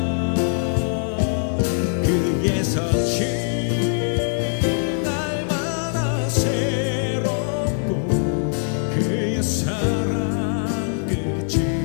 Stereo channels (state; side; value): silent; right; 64 dB below the other